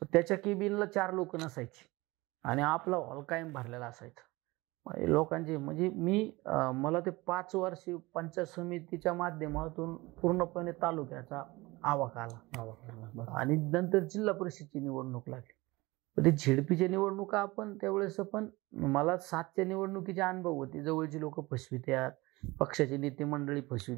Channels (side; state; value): left; quieter; 21.9 dB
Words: त्याच्या केबिनला 4 लोक नसायची आणि आपला हॉल कायम भरलेला असायचा. लोकांचे म्हणजे मला ते 5 वर्षी पंचायत समितीच्या माध्यमातून पूर्णपणे तालुक्याचा आवाका आला आणि नंतर जिल्हा परिषदची निवडणूक लागली. ते झेडपीच्या निवडणुका आपण त्यावेळेस पण मला 7च्या निवडणुकीचे अनुभव होते. जवळची लोक फसवित्यात, पक्षाचे नेते मंडळी